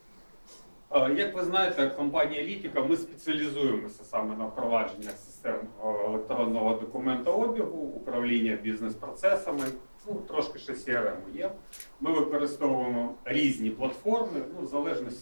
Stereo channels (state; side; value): inverted; both; correlation -1.00